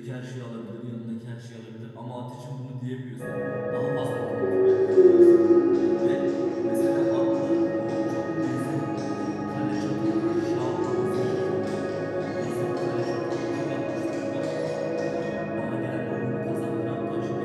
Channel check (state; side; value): identical; both; correlation 1.00